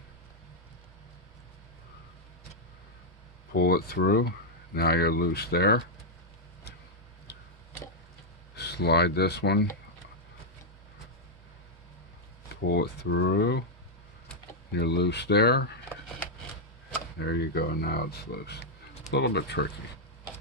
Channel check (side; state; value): both; normal; correlation -0.03